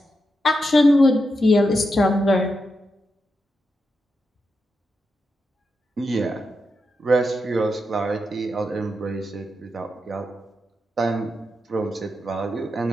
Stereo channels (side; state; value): both; normal; correlation 0.86